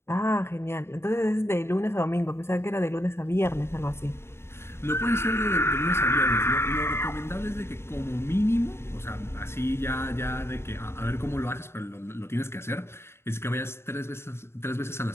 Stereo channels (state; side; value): late; right; 0.12 ms